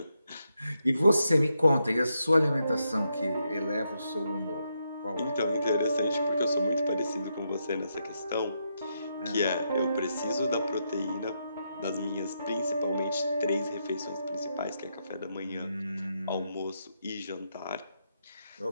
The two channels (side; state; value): both; inverted; correlation -0.82